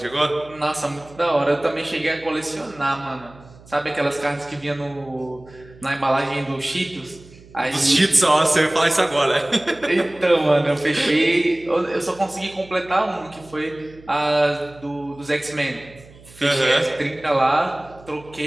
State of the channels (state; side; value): noise; right; hum, 23 dB below the sound